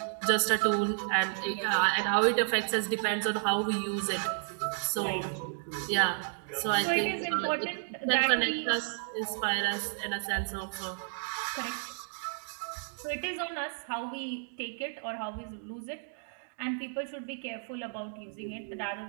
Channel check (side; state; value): left; silent; digital silence